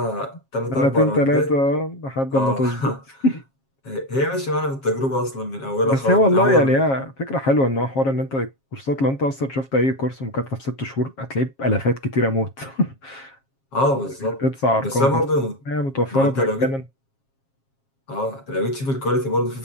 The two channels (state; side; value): late; right; 7.4 ms